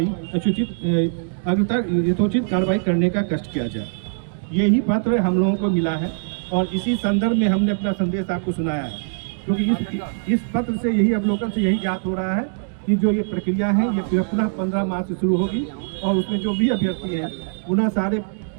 यथोचित कार्रवाई करने का कष्ट किया जाए। यही पत्र हम लोगों को मिला है और इसी संदर्भ में हमने अपना संदेश आपको सुनाया है, क्योंकि इस पत्र से यही अवलोकन से यही ज्ञात हो रहा है कि जो ये प्रक्रिया है ये पुनः 15 मार्च से शुरू होगी और उसमें जो भी अभ्यर्थी हैं पुनः सारे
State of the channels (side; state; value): left; silent; digital silence